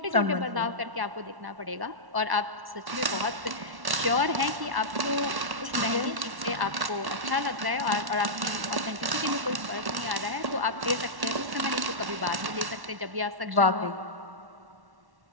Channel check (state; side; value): late; left; 1.1 ms